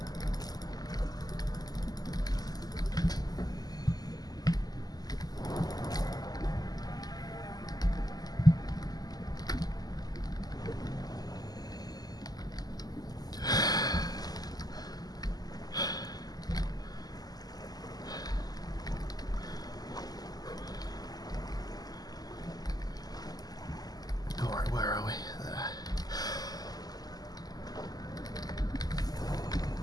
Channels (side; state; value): right; late; 0.19 ms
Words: Alright, where are we? There.